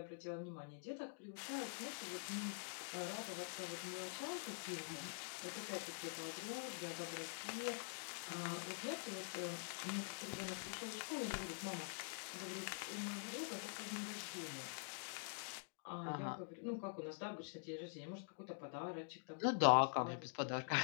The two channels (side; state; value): right; silent; digital silence